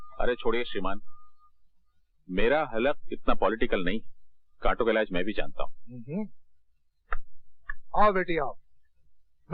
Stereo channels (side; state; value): both; identical; correlation 1.00